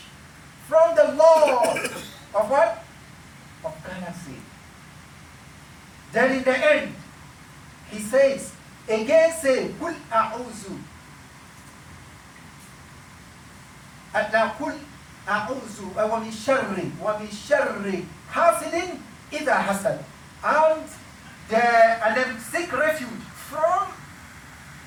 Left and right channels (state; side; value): identical; both; correlation 1.00